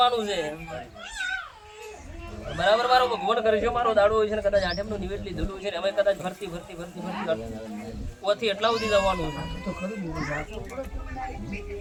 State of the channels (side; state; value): both; identical; correlation 1.00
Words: છે બરાબર. મારો ભગવાન કરે છે, મારો દાડો હોય છે ને કદાચ આઠમનું નિવેદ લીધેલું છે ને અમે કદાચ ભરતી ઓથી એટલા સુધી જવાનું છે.